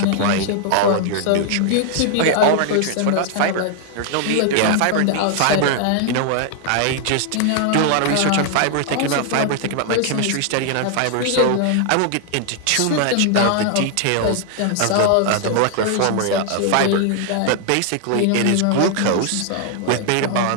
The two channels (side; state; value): both; different; correlation 0.00